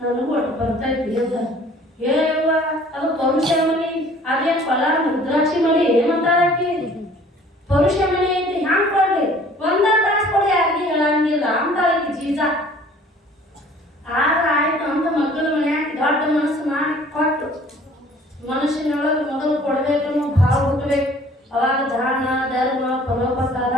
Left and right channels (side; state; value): both; normal; correlation 0.52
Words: ಒಟ್ಟು ಬರ್ತೈತಿ ಅಂತ. ಏವ ಅದು ಪರುಷಮಣಿ, ಅದೇ ಫಲ ಮುದ್ರಾಕ್ಷಿ ಮಣಿ ಏನಂತಾಳಕಿ? ಪರುಷಮಣಿ ಐತಿ ಹ್ಯಾಂಗ ಕೊಡ್ಲಿ, ಒಂದ ತಾಸು ಕೊಡಿ ಯಾರಿಗೆ ಹೇಳಂಗಿಲ್ಲ ಅಂತಾಳಕಿ ಜೀಜ. ಆದ್ರೆ ಆಯ್ತು ಅಂತ ಮಕ್ಕಳ ಮನ್ಯಾಗ ದೊಡ್ಡ ಮನಸ್ಸು ಮಾಡಿ ಕೊಟ್ಟು, ಮನುಷ್ಯನೊಳಗೆ ಮೊದಲು ಕೊಡ್ಬೇಕನ್ನೋ ಭಾವ ಹುಟ್ಟಬೇಕು. ಅವಾಗ ದಾನ ಧರ್ಮ ಪರೋಪಕಾರ